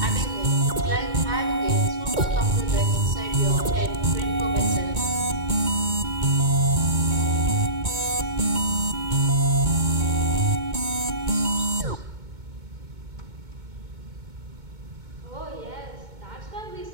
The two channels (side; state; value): left; late; 2.2 ms